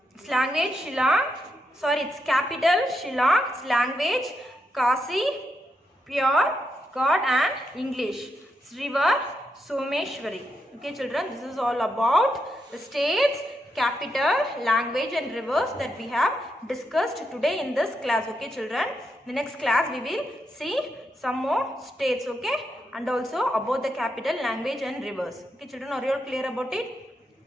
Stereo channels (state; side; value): normal; both; correlation 0.83